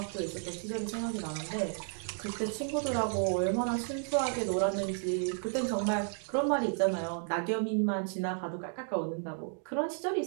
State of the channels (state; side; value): silent; left; 56 dB below the other